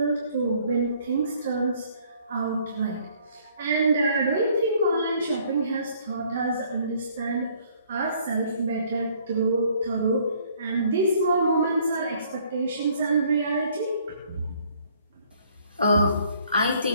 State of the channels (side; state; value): both; inverted; correlation -0.61